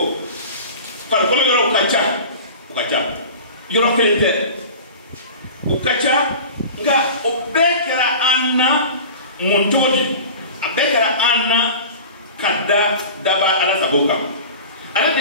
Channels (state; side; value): inverted; both; correlation -0.36